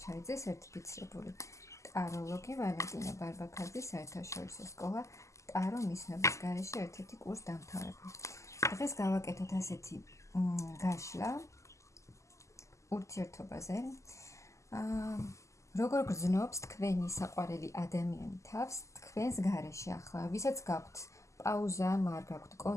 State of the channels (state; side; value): late; right; 0.15 ms